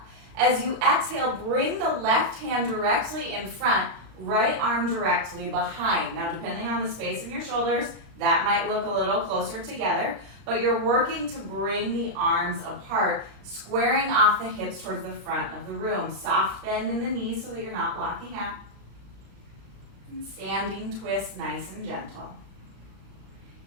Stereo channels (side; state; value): left; late; 35 ms